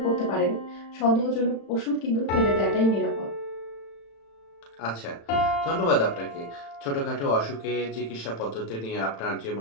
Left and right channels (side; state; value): right; late; 36 ms